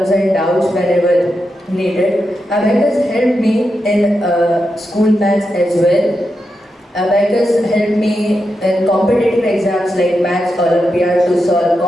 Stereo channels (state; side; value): normal; both; correlation 0.87